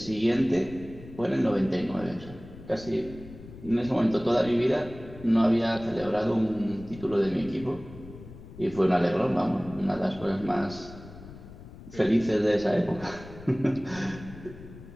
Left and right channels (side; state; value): left; noise; rumble, 16 dB below the sound